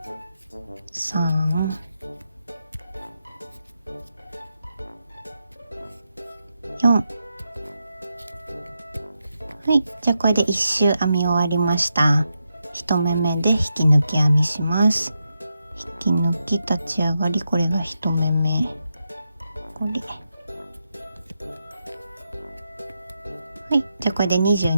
3、4。はい、じゃあこれで1周編み終わりました。1目目で引き抜き編みします。引き抜き立ち上がり、これが1目目。これ。はい、じゃあこれで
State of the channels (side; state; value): both; inverted; correlation -0.86